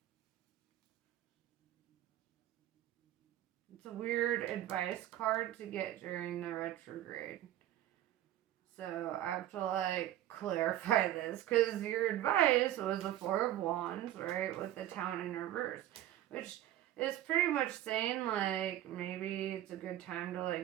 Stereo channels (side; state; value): left; quieter; 13.2 dB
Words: It's a weird advice card to get during the retrograde. So I have to like clarify this because your advice was the Four of Wands, right, with the Town in reverse, which is pretty much saying like maybe it's a good time to